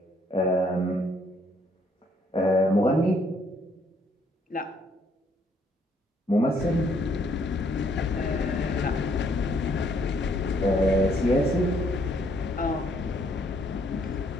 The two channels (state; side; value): normal; both; correlation 0.68